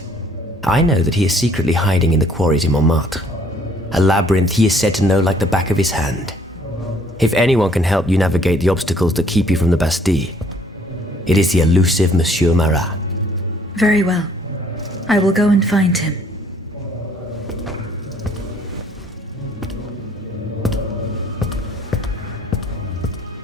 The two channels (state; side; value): normal; both; correlation 0.61